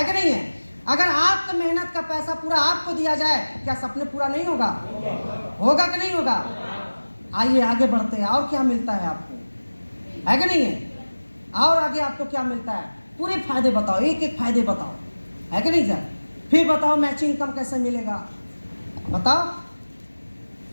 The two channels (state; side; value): inverted; both; correlation -1.00